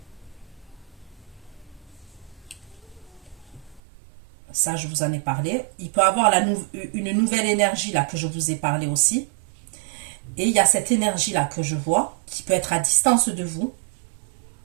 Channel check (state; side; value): drops out; left; at 3.8 s